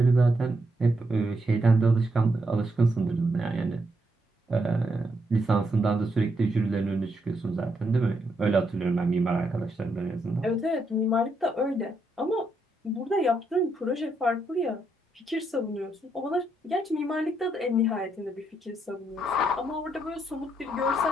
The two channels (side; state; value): both; normal; correlation 0.78